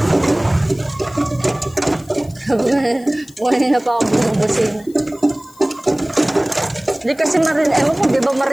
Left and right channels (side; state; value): left; noise; hiss, 26 dB below the sound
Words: Buhay na pa ako bumubusin. Hindi kasi marinig. Ewan ko, di ba